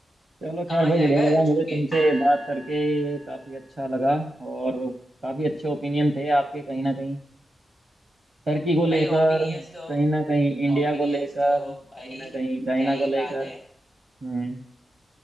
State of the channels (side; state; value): both; normal; correlation 0.88